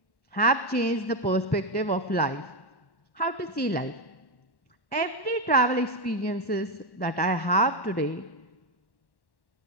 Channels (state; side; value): late; right; 1.1 ms